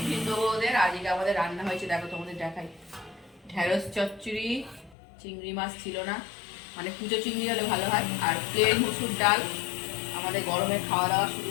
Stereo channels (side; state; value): right; drops out; at 5.0 s